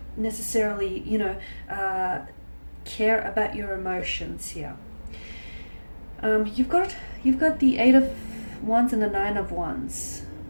necessarily, care about your emotions here. You've got the Eight of Wands and the Nine of Wands.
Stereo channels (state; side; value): inverted; both; correlation -1.00